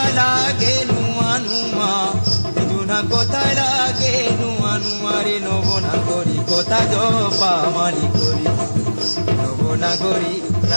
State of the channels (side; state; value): both; inverted; correlation -1.00